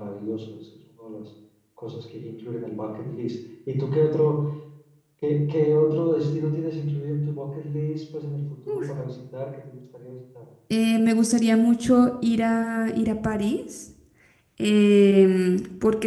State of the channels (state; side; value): identical; both; correlation 1.00